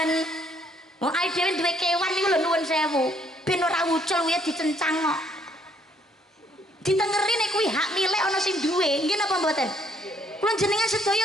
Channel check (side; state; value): both; normal; correlation 0.66